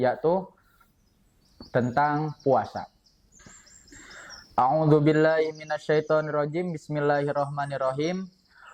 tentang puasa. A'udzu billahi minasyaitonir rajim. Bismillahirrahmanirrahim.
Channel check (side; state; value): both; identical; correlation 1.00